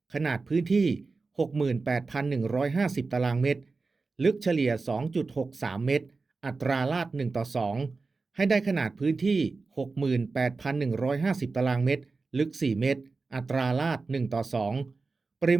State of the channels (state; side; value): quieter; left; 4.0 dB